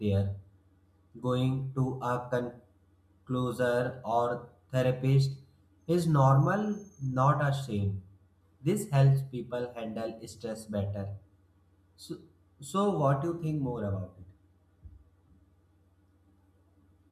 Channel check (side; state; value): both; identical; correlation 1.00